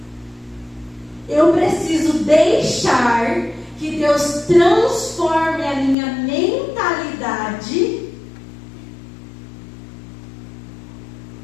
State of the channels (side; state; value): right; drops out; at 6.0 s